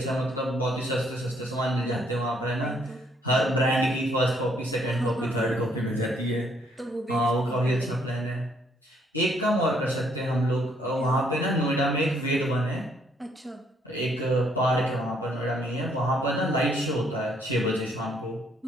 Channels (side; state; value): both; normal; correlation 0.68